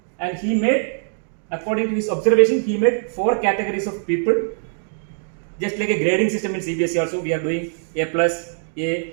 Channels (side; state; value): left; silent; digital silence